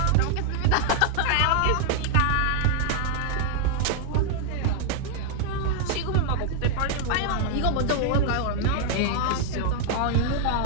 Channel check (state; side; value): different; both; correlation 0.00